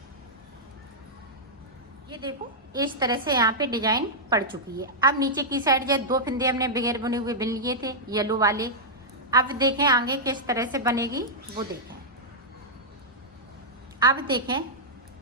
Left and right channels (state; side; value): normal; both; correlation -0.08